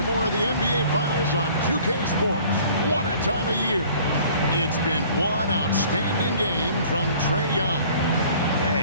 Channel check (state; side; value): inverted; both; correlation -0.52